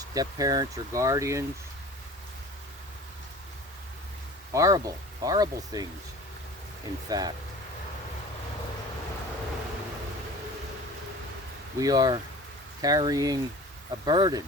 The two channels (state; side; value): normal; both; correlation 0.41